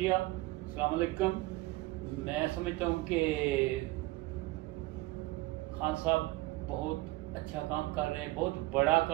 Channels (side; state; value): left; quieter; 19.9 dB